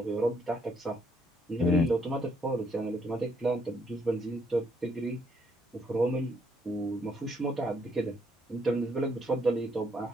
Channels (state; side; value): normal; both; correlation 0.71